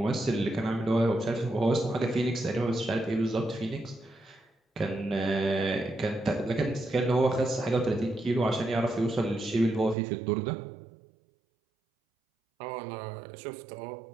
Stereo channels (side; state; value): left; drops out; at 10.0 s